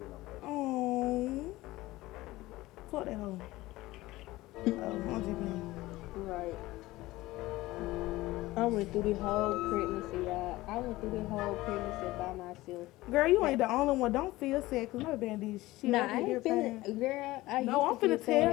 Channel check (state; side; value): quieter; right; 18.3 dB